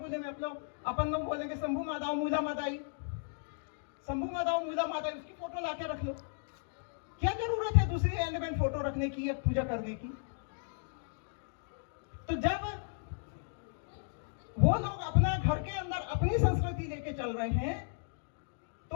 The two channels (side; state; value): right; silent; digital silence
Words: में अपन लोग बोलेंगे शंभू मादाओ मूला मादाई, शंभू मादाओ मूला मादाई, उसकी फोटो लाके रख लो। क्या जरूरत है दूसरी एलिमेंट फोटो रखने की या पूजा करने की? तो जब वो लोग अपना घर के अंदर अपनी संस्कृति लेके चल रहे हैं,